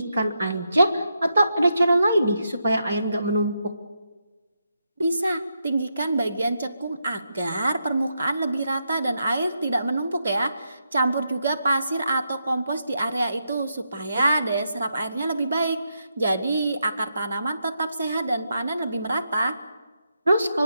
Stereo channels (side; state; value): both; inverted; correlation -0.83